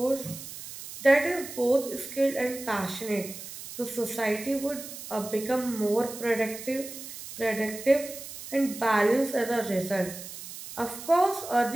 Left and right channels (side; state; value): right; noise; hiss, 12 dB below the sound